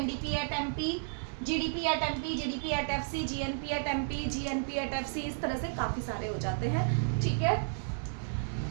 at MP, GDP at MP, GDP at FC, GNP at MP, GNP at FC, इस तरह से काफी सारे हो जाते हैं। ठीक है,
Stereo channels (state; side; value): silent; left; 56 dB below the other